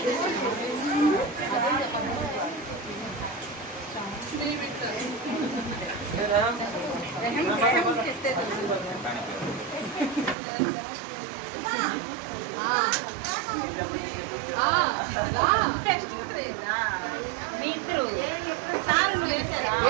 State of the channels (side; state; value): left; drops out; at 10.4 s